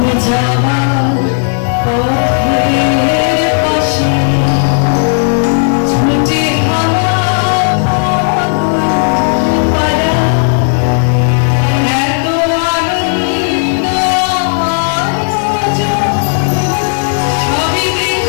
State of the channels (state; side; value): silent; right; digital silence